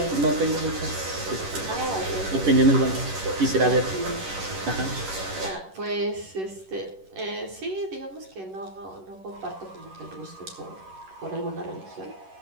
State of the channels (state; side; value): late; left; 11 ms